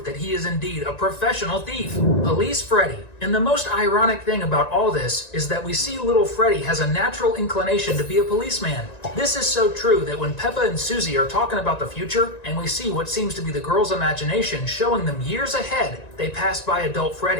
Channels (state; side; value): late; right; 1.9 ms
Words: that he is indeed a professional thief. Police Freddy. And the most ironic thing about all this is that we see little Freddy has a natural inclination to be a policeman. This is so true that when Peppa and Susie are talking about the future, and we see what seems to be the girl's imagination showing them years ahead, they pass by adult